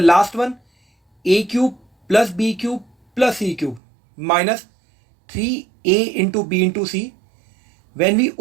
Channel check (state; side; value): drops out; left; at 3.8 s